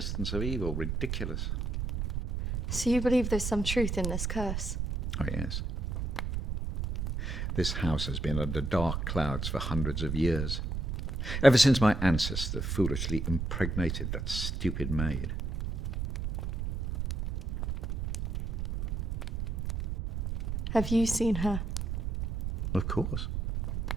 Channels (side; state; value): right; noise; rumble, 2 dB below the sound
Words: of evil. Ridiculous. So you believe there's some truth in this curse? Oh, yes. This house has been under dark clouds for hundreds of years. Ever since my ancestor foolishly impregnated that stupid maid. Have you seen her? Of course.